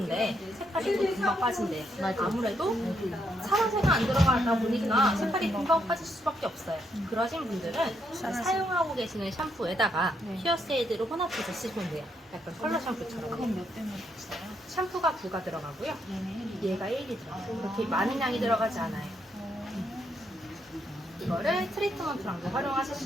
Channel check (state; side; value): normal; both; correlation 0.77